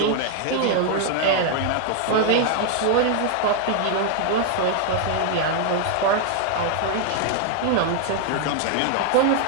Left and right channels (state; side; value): different; both; correlation 0.00